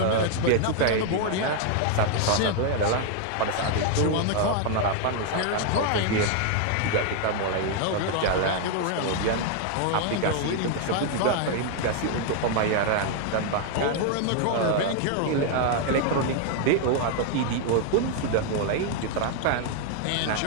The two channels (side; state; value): both; different; correlation 0.00